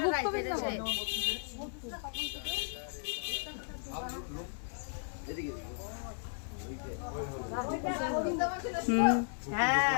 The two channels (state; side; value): silent; right; 54 dB below the other